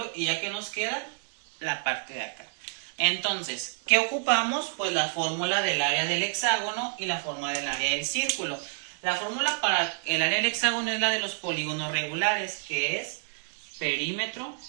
y ya que nos queda la parte de acá. Entonces, ¿qué ocupamos? Pues la fórmula del área del hexágono y la fórmula del área del círculo. La fórmula para el área del hexágono es la de los polígonos regulares, que es perímetro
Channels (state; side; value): silent; left; digital silence